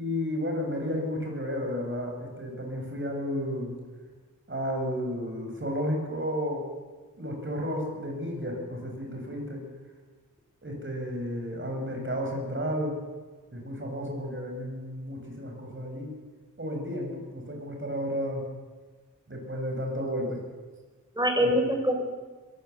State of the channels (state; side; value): normal; both; correlation 0.32